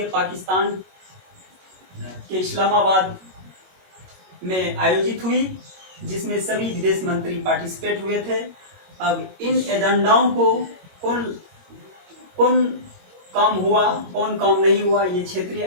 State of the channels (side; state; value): left; late; 22 ms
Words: पाकिस्तान के इस्लामाबाद में आयोजित हुई, जिसमें सभी विदेश मंत्री पार्टिसिपेट हुए थे। अब इन एजेंडाओं को कौन काम हुआ, कौन काम नहीं हुआ, ये क्षेत्रीय